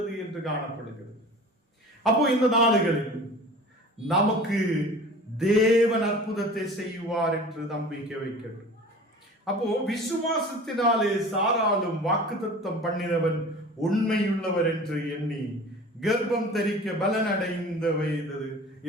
என்று காணப்படுகிறது. அப்போ இந்த நாளுகளில் நமக்கு தேவன் அற்புதத்தை செய்வார் என்று நம்பிக்கை வைக்கணும். அப்போ விசுவாசத்தினாலே சாராலும் வாக்குத்தத்தம் பண்ணினவன் உண்மையுள்ளவர் என்று எண்ணி கர்ப்பம் தரிக்க பலன் அடைந்த வயது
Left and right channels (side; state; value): both; normal; correlation 0.41